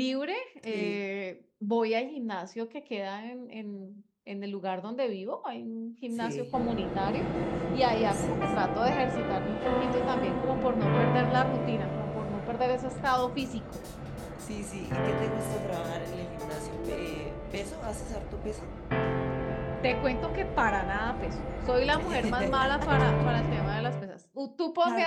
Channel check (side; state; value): both; identical; correlation 1.00